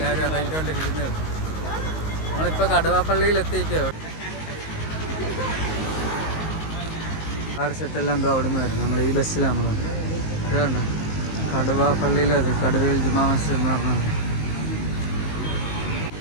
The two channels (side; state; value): right; late; 19 ms